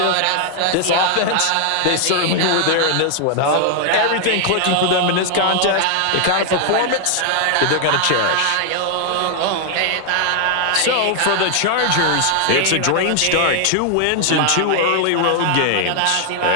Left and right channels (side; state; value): both; different; correlation 0.00